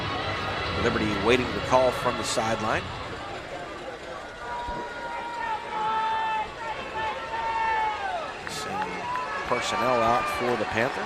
Liberty waiting the call from the sideline. Sending personnel out for the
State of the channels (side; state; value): both; identical; correlation 1.00